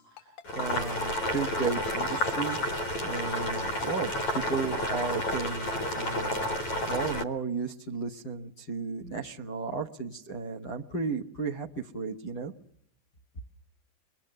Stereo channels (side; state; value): right; late; 9.1 ms